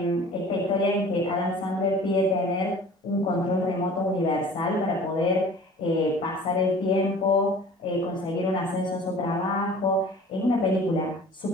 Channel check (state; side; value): normal; both; correlation 0.45